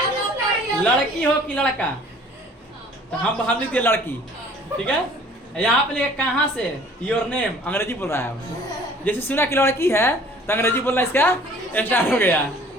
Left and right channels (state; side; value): normal; both; correlation 0.52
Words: लड़की हो कि लड़का, तो हम लिख दिए लड़की। ठीक है, यहाँ पे लिखे कहाँ से, योर नेम, अंग्रेजी बोल रहा है। जैसे सुना कि लड़की है तो अंग्रेजी बोलना इसका स्टार्ट हो गया।